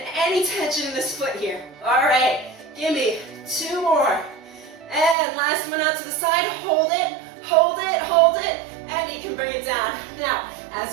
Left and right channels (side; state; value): left; drops out; at 5.2 s